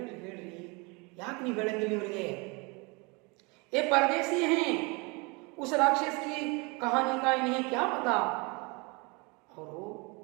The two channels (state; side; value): quieter; left; 28.9 dB